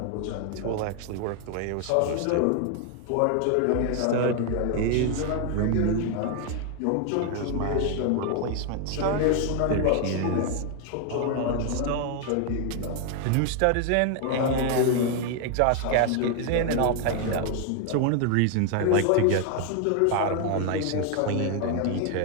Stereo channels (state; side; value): different; both; correlation 0.00